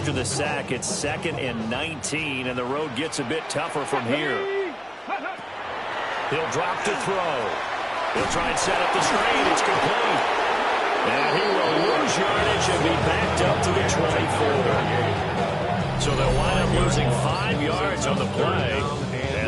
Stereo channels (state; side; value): identical; both; correlation 1.00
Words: the sack, it's 2nd and 19, and the road gets a bit tougher from here. He'll drop to throw. He'll try and set up the screen. It's complete. And he will lose yardage and be backed up to the 24. So they'll wind up losing 5 yards on the play,